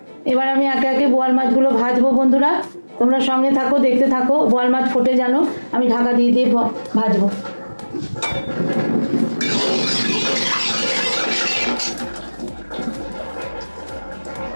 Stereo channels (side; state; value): both; inverted; correlation -1.00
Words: এবার আমি একে একে বোয়াল মাছগুলো ভাজবো বন্ধুরা, তোমরা সঙ্গে থাকো, দেখতে থাকো। বোয়াল মাছ ফোটে যেন আমি ঢাকা দিয়ে দিয়ে ভাজবো।